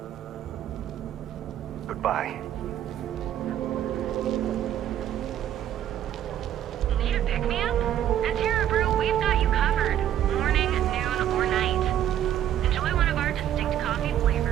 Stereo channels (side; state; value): left; quieter; 11.1 dB